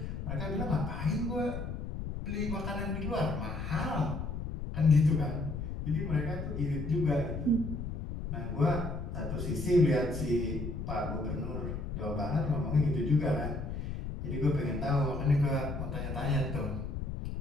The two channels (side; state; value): left; noise; rumble, 5 dB below the sound